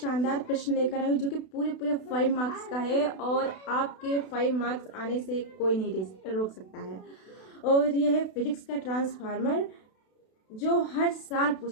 प्रश्न लेकर आई हूँ जो कि पूरे पूरे 5 मार्क्स का है और आपके 5 मार्क्स आने से कोई नहीं रोक सकता है। और यह है फिजिक्स का ट्रांसफार्मर जो हर साल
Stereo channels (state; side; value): late; right; 32 ms